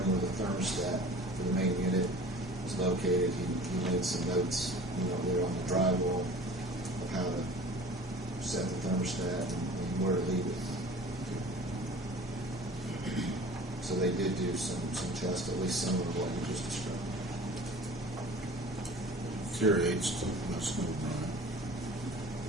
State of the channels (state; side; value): normal; both; correlation 0.44